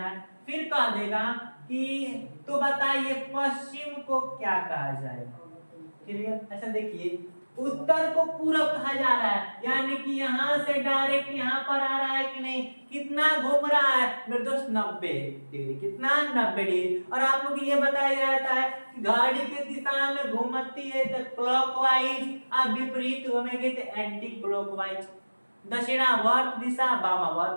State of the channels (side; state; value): both; inverted; correlation -1.00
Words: फिर कह देगा कि तो बताइए पश्चिम को क्या कहा जाएगा। क्लियर, अच्छा देखिए, उत्तर को पूरब कहा जा रहा है, यानी कि यहाँ से डायरेक्ट यहाँ पर आ रहा है कि नहीं, कितना घूम रहा है मेरे दोस्त, 90 डिग्री। कितना, 90 डिग्री। और आप लोग ये बताया जाता है कि घड़ी के दिशा में घूमती है तो क्लॉकवाइज, आप विपरीत घूमेंगे तो एंटी क्लॉकवाइज। दक्षिणावर्त दिशा,